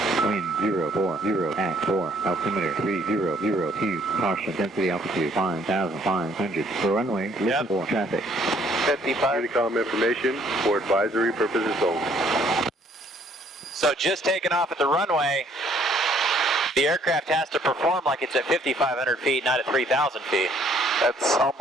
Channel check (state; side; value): normal; both; correlation 0.63